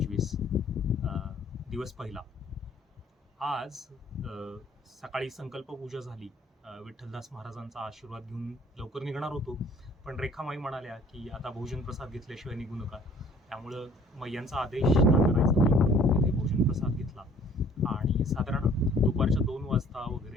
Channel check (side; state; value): both; normal; correlation 0.55